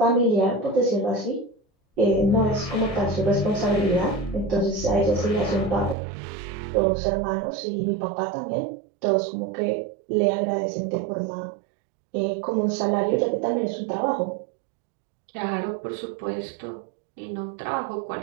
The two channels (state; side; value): drops out; left; at 6.0 s